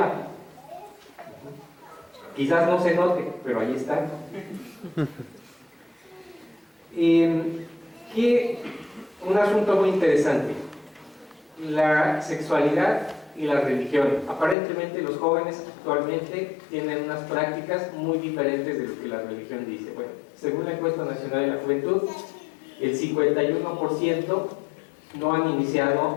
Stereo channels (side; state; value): right; drops out; at 14.6 s